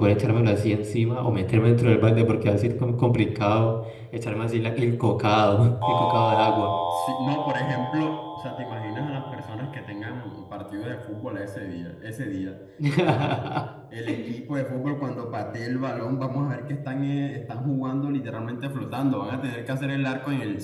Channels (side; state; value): both; identical; correlation 1.00